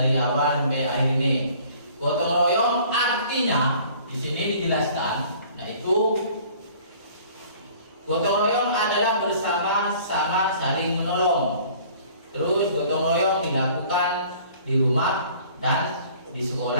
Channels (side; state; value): both; inverted; correlation -0.52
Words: sampai akhir ini. Gotong royong artinya di sini dijelaskan, yaitu gotong royong adalah bersama-sama saling menolong. Terus gotong royong dilakukan di rumah dan di